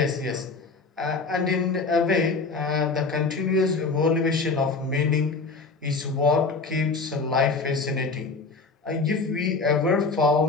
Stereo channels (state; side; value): quieter; right; 4.1 dB